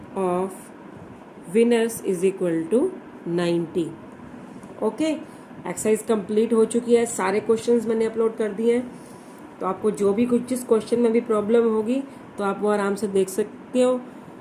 of winners is equal to 90. Okay, exercise complete हो चुकी है. सारे क्वेश्चंस मैंने अपलोड कर दिए हैं, तो आपको जो भी कुछ जिस क्वेश्चन में भी प्रॉब्लम होगी तो आप वो आराम से देख सकते हो.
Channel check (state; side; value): identical; both; correlation 1.00